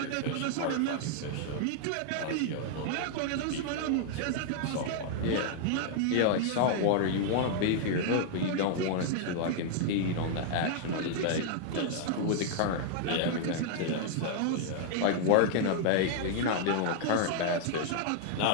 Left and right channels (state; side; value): different; both; correlation -0.01